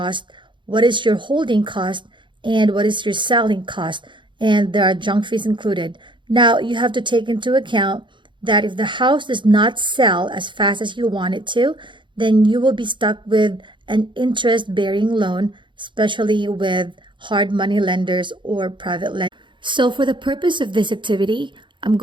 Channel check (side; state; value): left; late; 0.23 ms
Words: what is your holding cost, and what is your selling cost. And there are junk fees included. Now, you have to take into account that if the house does not sell as fast as you want it to, then you will be stuck with an interest-bearing loan, especially with hard money lenders or private lenders. So for the purpose of this activity, I'm